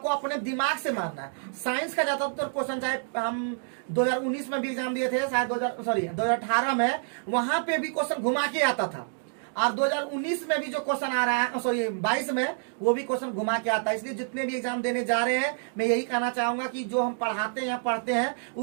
अपने दिमाग से मारना है। साइंस का ज्यादातर क्वेश्चन, चाहे हम 2019 में भी एग्जाम दिए थे, शायद 2018 में, वहां पे भी क्वेश्चन घुमा के आता था, और 2019 में भी जो क्वेश्चन आ रहा है, 22 में, वो भी क्वेश्चन घुमा के आता है। इसलिए जितने भी एग्जाम देने जा रहे हैं, मैं यही कहना चाहूंगा कि जो हम पढ़ाते हैं या पढ़ते हैं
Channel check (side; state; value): left; silent; digital silence